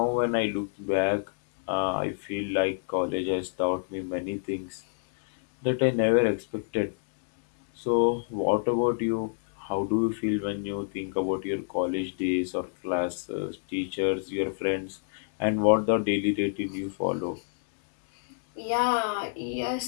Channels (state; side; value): silent; right; digital silence